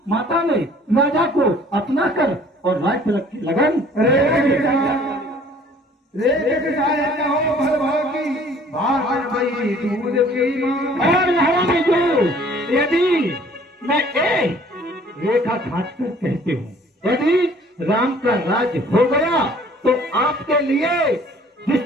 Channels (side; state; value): both; normal; correlation 0.54